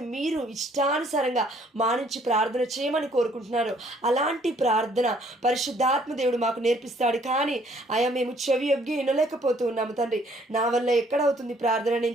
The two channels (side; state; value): both; normal; correlation 0.62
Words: మీరు ఇష్టానుసారంగా మానించి ప్రార్థన చేయమని కోరుకుంటున్నారో అలాంటి ప్రార్థన పరిశుద్ధాత్మ దేవుడు మాకు నేర్పిస్తాడు. కానీ అయా మేము చెవి యొగ్గి వినలేకపోతూ ఉన్నాము తండ్రి. నా వల్ల ఎక్కడవుతుంది ప్రార్థన,